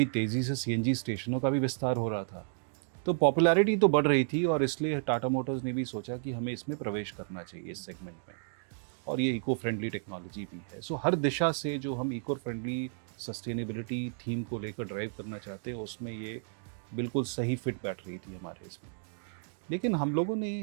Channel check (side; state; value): left; silent; digital silence